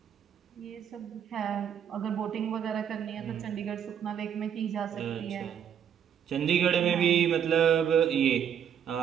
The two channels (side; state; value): left; quieter; 8.7 dB